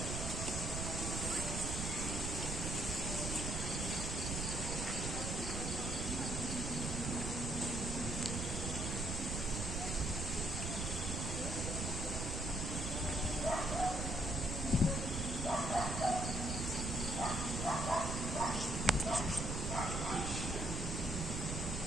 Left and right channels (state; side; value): noise; right; rumble, 3 dB below the sound